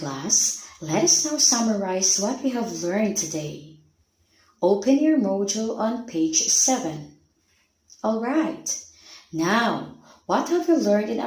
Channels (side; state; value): both; identical; correlation 1.00